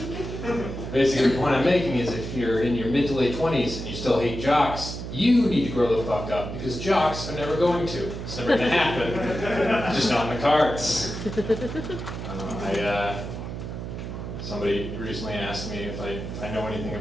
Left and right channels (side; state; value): right; noise; hum, 7 dB below the sound